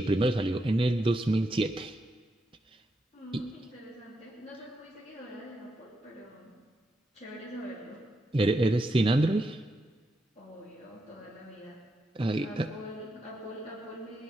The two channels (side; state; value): both; normal; correlation 0.83